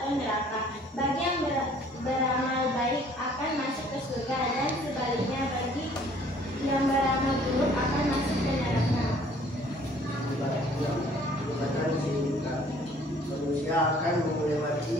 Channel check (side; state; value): both; normal; correlation 0.57